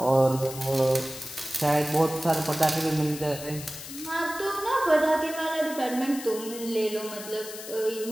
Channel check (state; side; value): noise; left; hiss, 12 dB below the sound